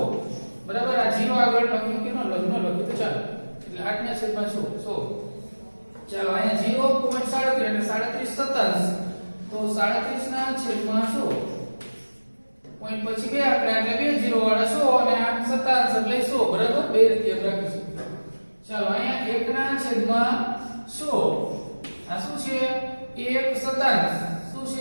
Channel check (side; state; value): both; inverted; correlation -1.00